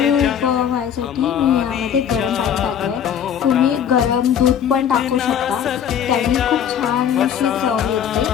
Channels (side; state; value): right; quieter; 8.8 dB